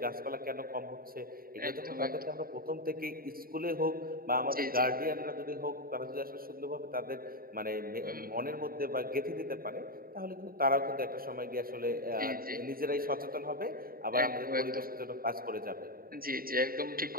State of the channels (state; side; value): late; left; 0.43 ms